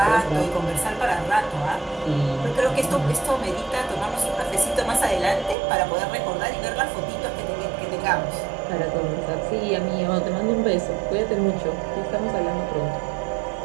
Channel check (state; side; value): drops out; left; at 5.6 s